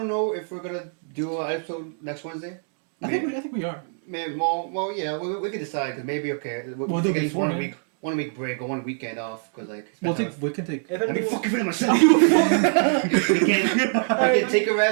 know if we're gonna do an episode next Wednesday. I think we are. Maybe, well, yeah, we could decide because maybe We'll do take before, man. one week break or 1 weekend off because like We can take. If I mean, anything, fucking feeling myself. we can take a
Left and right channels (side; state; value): left; silent; 59 dB below the other